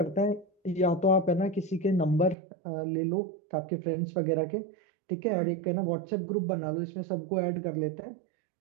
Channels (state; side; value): drops out; left; at 2.4 s